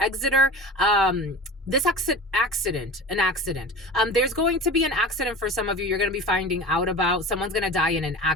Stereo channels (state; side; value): normal; both; correlation 0.34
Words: this accident. There's going to be an accident for some of you. You're going to be finding out about. Someone's going to die in an